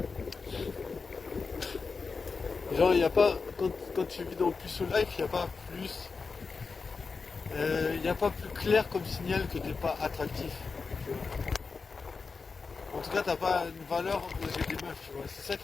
genre, il n'y a pas, quand tu vis dans le plus life, il n'y a pas plus, il n'y a pas plus clair comme signal que t'es pas attractif. Tu vois. En tout cas, t'as pas une valeur aux yeux des meufs, tu vois. C'est ça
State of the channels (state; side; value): quieter; right; 4.7 dB